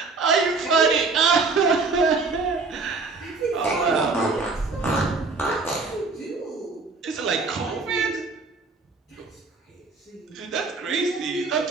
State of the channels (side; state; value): left; quieter; 4.1 dB